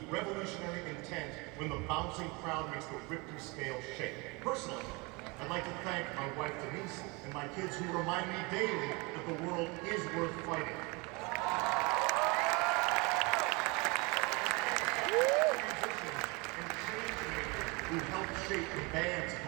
revolutionary intent when the bouncing crowd makes the Richter scale shake? Personally, I'd like to thank my wife Denise and my kids who remind me daily that the world is worth fighting. Musicians and change makers who helped shape the band's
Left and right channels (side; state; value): left; quieter; 27.0 dB